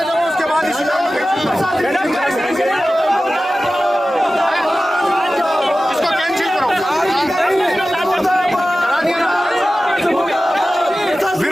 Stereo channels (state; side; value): normal; both; correlation 0.95